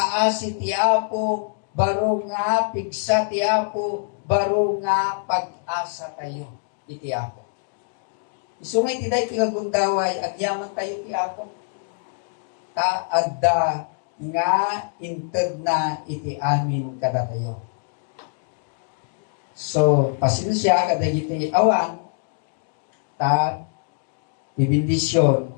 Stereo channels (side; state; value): right; silent; digital silence